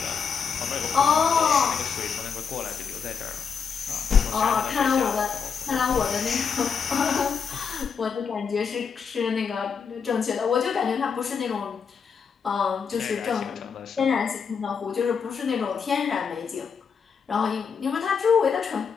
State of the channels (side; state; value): right; quieter; 6.2 dB